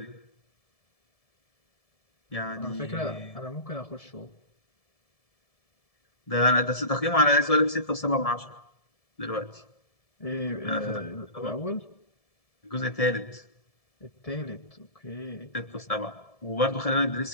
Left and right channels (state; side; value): late; right; 1.7 ms